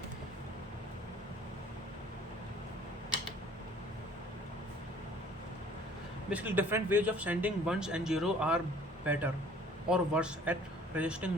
Basically, different ways of sending ones and zero are better or worse at resisting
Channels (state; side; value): normal; both; correlation 0.53